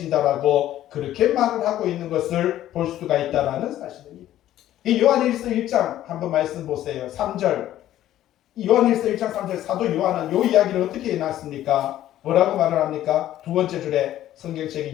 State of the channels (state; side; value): quieter; right; 12.9 dB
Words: 그렇게 말을 하고 있는 것을 볼 수가 있다는 사실입니다. 이 요한일서 1장 한번 말씀 보세요. 3절. 요한일서 1장 3절 사도 요한은 이 이야기를 어떻게 해놨습니까? 뭐라고 말을 합니까? 두 번째 줄에